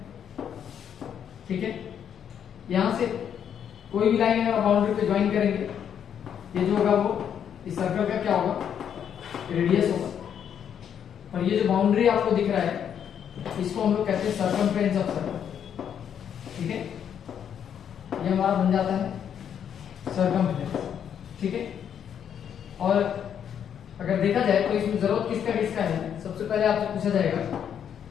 ठीक है। यहां से कोई भी लाइन अगर बाउंड्री पे ज्वाइन करेंगे, ये जो होगा वो इस सर्कल का क्या होगा, रेडियस होगा। और ये जो बाउंड्री आपको दिख रहा है इसको हम लोग कहते हैं सर्कमफ्रेंस ऑफ सर्कल, ठीक है। ये हमारा बन जाता है सर्कमफ्रेंस, ठीक है। और अगर देखा जाए तो इसमें जरूरत किसका किसका है, सबसे पहले आपसे पूछा जाएगा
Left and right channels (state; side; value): quieter; right; 8.6 dB